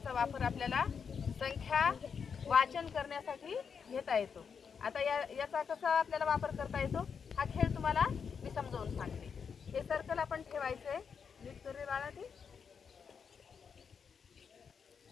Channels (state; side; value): quieter; right; 6.4 dB